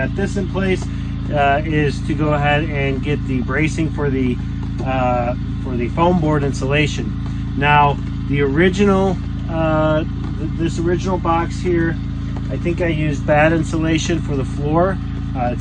this in place, is to go ahead and get the bracing for the foam board insulation. Now the original this original box here, I think I used bad insulation for the floor.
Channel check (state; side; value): identical; both; correlation 1.00